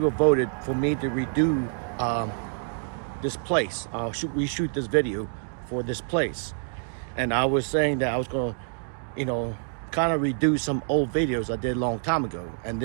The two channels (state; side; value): silent; left; digital silence